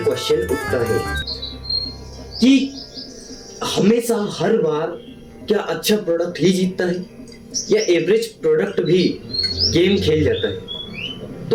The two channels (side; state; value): both; identical; correlation 1.00